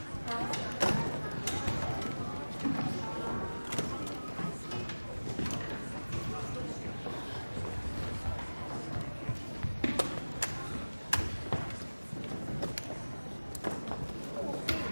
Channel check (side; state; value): both; inverted; correlation -1.00